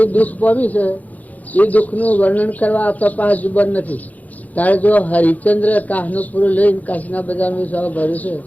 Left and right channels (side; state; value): right; late; 0.077 ms